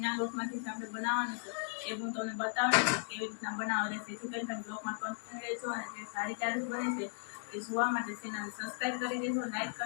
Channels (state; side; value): silent; right; digital silence